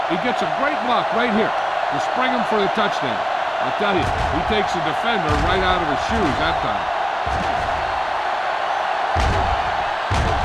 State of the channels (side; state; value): both; identical; correlation 1.00